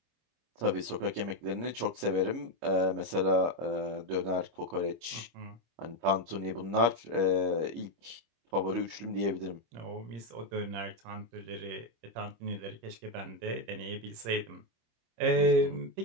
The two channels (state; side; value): late; left; 25 ms